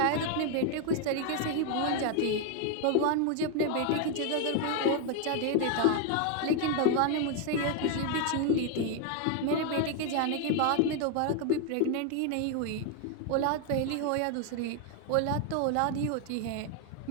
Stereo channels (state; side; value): different; both; correlation 0.01